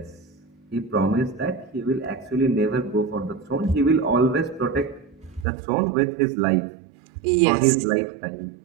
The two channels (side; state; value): left; drops out; at 5.5 s